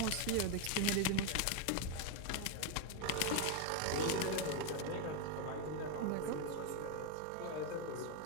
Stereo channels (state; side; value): different; both; correlation 0.01